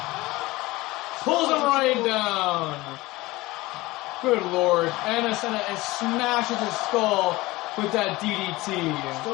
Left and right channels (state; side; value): quieter; right; 20.2 dB